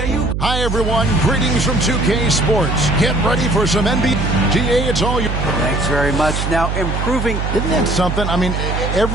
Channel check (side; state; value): right; noise; hum, 2 dB below the sound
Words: Hi, everyone. Greetings from 2K Sports. Get ready for some NBA. GA, it's all you. Thanks very much. Now, improving. Isn't that something? I mean,